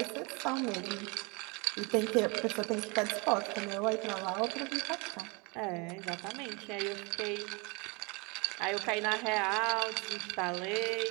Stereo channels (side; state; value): left; quieter; 28.9 dB